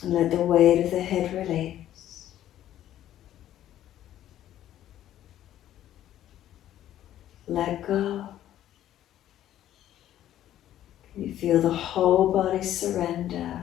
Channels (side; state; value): right; quieter; 12.2 dB